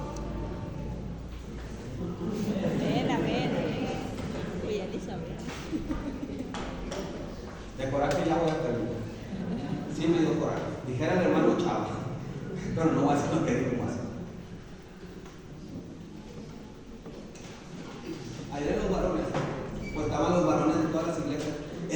De coraje ya voy a terminar. Sí me dio coraje. Dijera el hermano Chávez, pero no voy a hacer lo que digo más. Ayer los varones, pues estaban los varones de todas las iglesias.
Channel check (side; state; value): both; identical; correlation 1.00